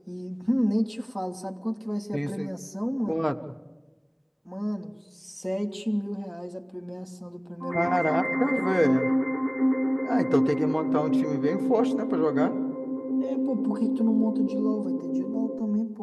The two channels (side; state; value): both; identical; correlation 1.00